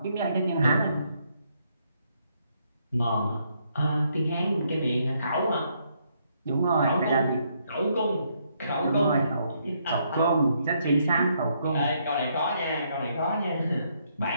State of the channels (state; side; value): inverted; both; correlation -0.73